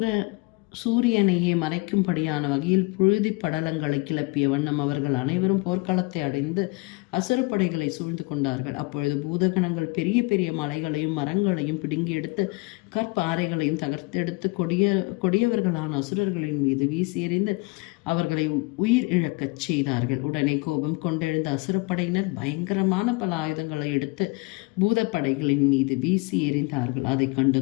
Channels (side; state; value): right; quieter; 25.5 dB